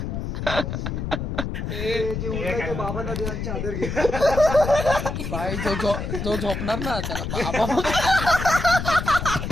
बाई जो झोपणार ना त्याला बाबा.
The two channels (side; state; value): left; noise; rumble, 4 dB below the sound